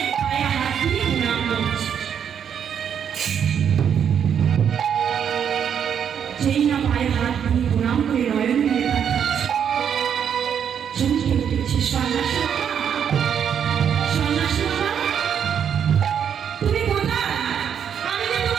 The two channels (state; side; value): quieter; left; 8.2 dB